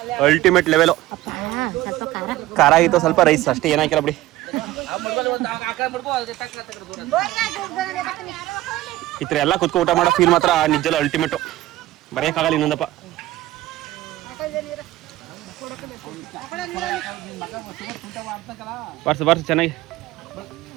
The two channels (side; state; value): left; quieter; 16.2 dB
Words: ಅಲ್ಟಿಮೇಟ್ ಲೆವೆಲು. ಖಾರ ಆಗಿತ್ತು ಸ್ವಲ್ಪ, ರೈಸ್ ಅಷ್ಟೇ, ಏನಾಕಿಲ್ಲ ಬಿಡಿ. ಈ ಥರ ಎಲ್ಲ ಕುತ್ಕೊಂಡು ಊಟ ಮಾಡೋ ಫೀಲ್ ಮಾತ್ರ ನಿಜಲ್ಲ ಅಲ್ಟಿಮೇಟು, ಬರೆಯೋಕ್ಕಾಗಲ್ಲ ಇನ್ನೊಂದಪ್ಪ. ಬರ್ಸ ಚೆನ್ನಾಗಿ.